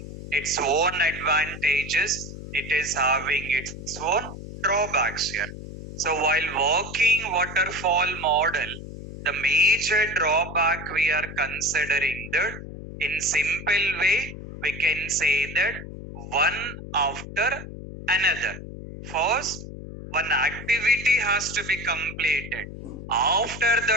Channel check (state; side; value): noise; left; hum, 11 dB below the sound